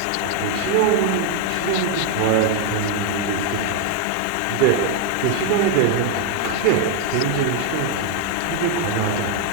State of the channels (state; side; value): different; both; correlation 0.01